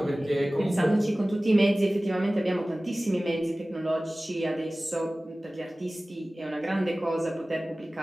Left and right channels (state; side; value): normal; both; correlation 0.97